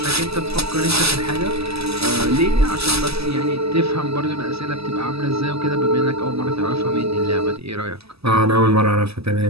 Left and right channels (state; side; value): late; left; 0.78 ms